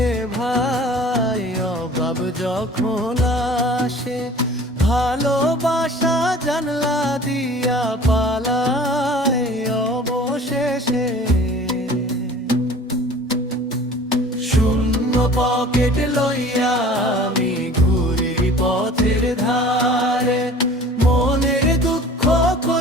ভাই, অভাব যখন আসে, ভালোবাসা জানলা দিয়া পালায় অবশেষে। শূন্য পকেট লইয়া আমি ঘুরি পথের ধারে, মনের দুঃখ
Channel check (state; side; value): normal; both; correlation 0.46